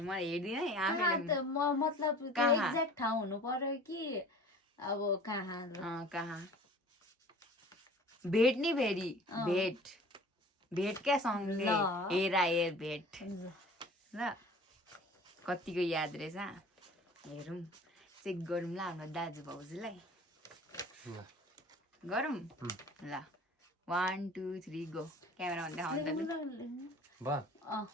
मलाई हेर्दिनँ मतलब एक्ज्याक्ट ठाउँ हुनु पर्यो कि अब कहाँ भेट नि फेरि भेट क्या सँगले हेर भेट ल कतिको याद रहेछ हेरौँ चेक गरौँ ल हाम्रो दाजु भाउजूलाई गरौँ ल 1 2 3 गो क्यामेरा भन्दा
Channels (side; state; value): both; normal; correlation 0.44